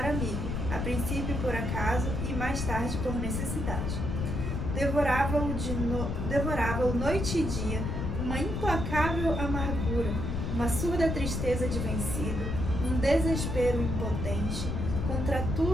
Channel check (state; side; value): noise; left; rumble, 2 dB below the sound